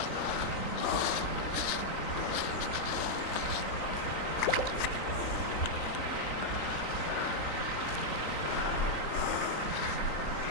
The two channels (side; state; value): right; late; 3.9 ms